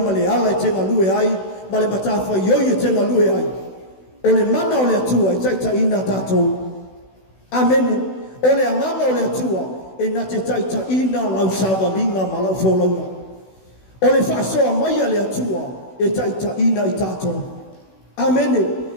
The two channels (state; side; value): late; right; 16 ms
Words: le ala e te ngalue ai ma le matawha ioi e te ngalue ai o le mana o le atua e taita ina tātou. Amen. O le amanga o le atua e na te taita ina lau sāwalinga ma lau wholaunga o le whasoa mai a le atua e taita ina i tātou. Amene.